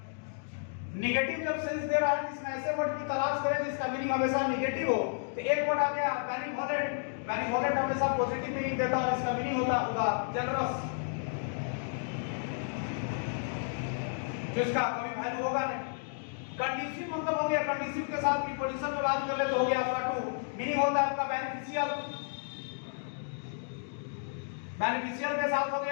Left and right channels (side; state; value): right; silent; digital silence